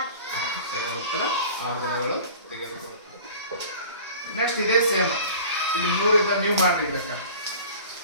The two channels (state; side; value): inverted; both; correlation -0.42